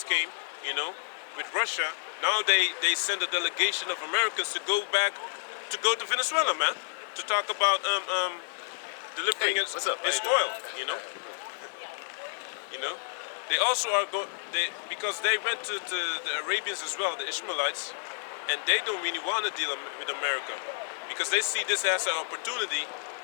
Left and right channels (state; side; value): silent; right; digital silence